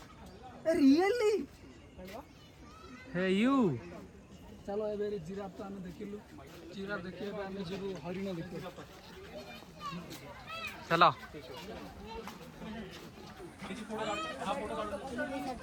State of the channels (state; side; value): identical; both; correlation 1.00